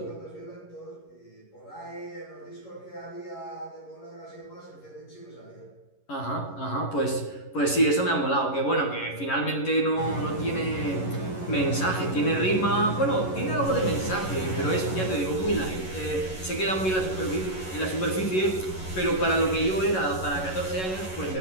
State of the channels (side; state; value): right; late; 11 ms